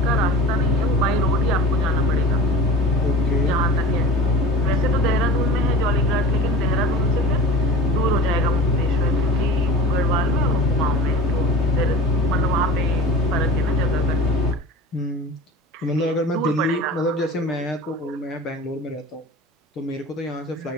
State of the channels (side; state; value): both; normal; correlation 0.36